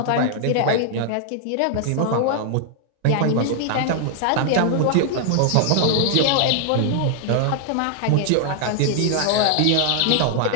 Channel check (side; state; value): both; different; correlation 0.00